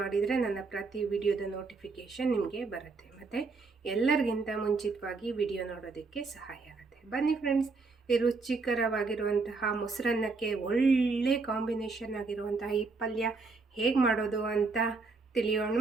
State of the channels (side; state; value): left; quieter; 4.1 dB